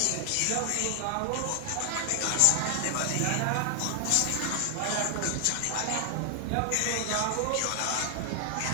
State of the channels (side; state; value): both; different; correlation 0.00